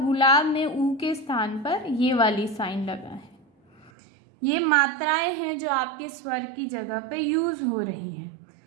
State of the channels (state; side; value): drops out; left; at 3.9 s